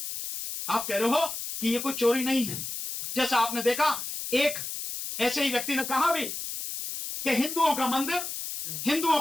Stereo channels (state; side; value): noise; left; hiss, 6 dB below the sound